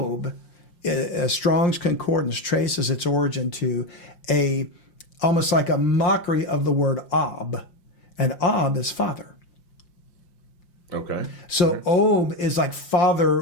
Strong's Concordance traces its origin to almost like a mockery of the word Ab. And Ab is father. Okay. So Ob is like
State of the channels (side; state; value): right; late; 5.7 ms